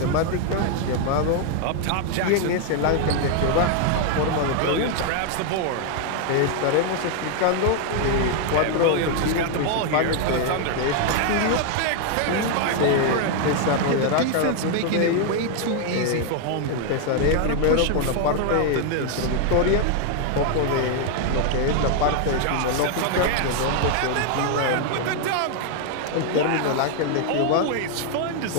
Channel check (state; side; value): different; both; correlation 0.00